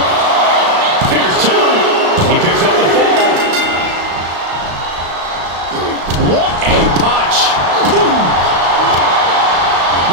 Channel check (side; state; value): left; late; 35 ms